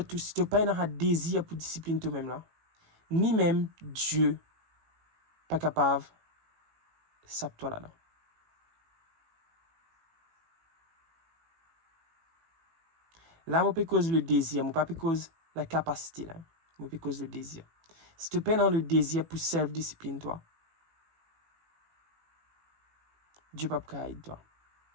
si tu n'as pas un désir pour discipline toi-même, là, ni même Dieu pas capable de saper toi là-dedans. Là, je peux cause le désir, je ne peux pas cause la capacité, là. Je peux cause le désir. Si tu peines dans le désir pour self-discipline, toi, Dieu ne peut pas aider toi.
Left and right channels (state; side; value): late; left; 18 ms